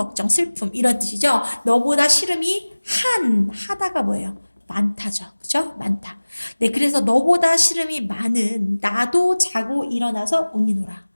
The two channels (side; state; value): both; inverted; correlation -1.00